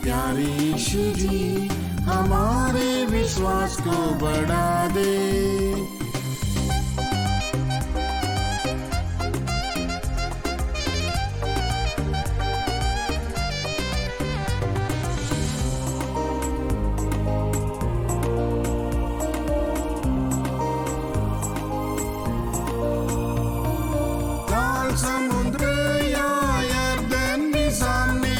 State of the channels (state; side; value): identical; both; correlation 1.00